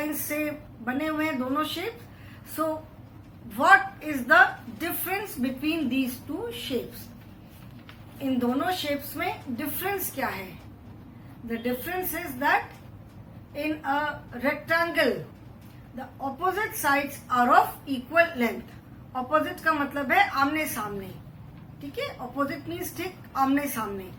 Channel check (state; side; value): identical; both; correlation 1.00